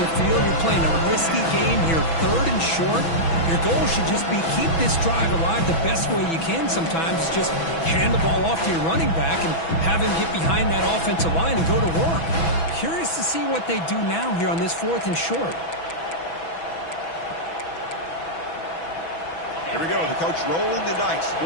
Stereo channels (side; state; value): right; late; 6.1 ms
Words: the field, you're playing a risky game here, third and short. Your goal should just be keep this drive alive the best way you can sometimes. Is just hand the ball off to your running back and have him get behind that offensive line and go to work. Curious to see what they do now here on this fourth and short. Here we go. The coach rolling the dice.